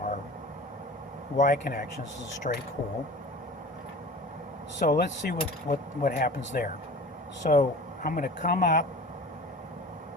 Y connections. This is straight cool. So let's see what happens there. So I'm going to come up.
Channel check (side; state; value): both; normal; correlation 0.39